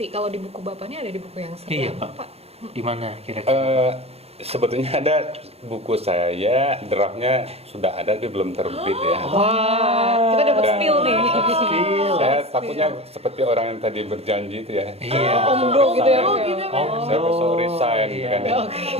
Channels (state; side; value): late; left; 0.29 ms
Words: Kalau di buku Bapak ini ada di buku yang iya seberapa Pak. Di mana kira-kira? Sebetulnya ada buku saya, draftnya sudah ada tapi belum terbit ya. Wah, kita dapat Dan- spill nih. Saya takutnya seperti orang yang tadi berjanji itu ya. Iya. Omdo gitu ya. Oh, gitu, Pak. Saya besok resign gitu kan ya.